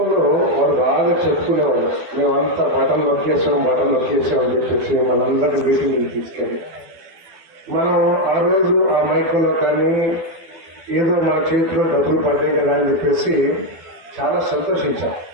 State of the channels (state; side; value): late; left; 12 ms